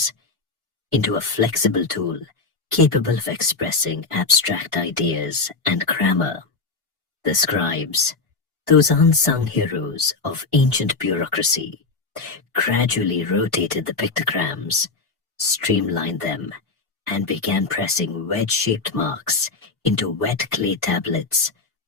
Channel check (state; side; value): quieter; right; 4.0 dB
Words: into a flexible tool capable of expressing abstract ideas and grammar. The scribes, those unsung heroes of ancient bureaucracy, gradually rotated the pictograms, streamlined them, and began pressing wedge-shaped marks into wet clay tablets